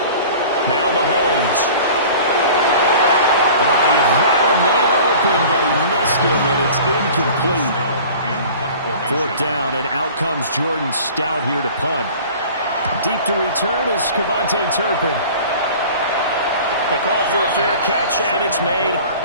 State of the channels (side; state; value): both; inverted; correlation -0.43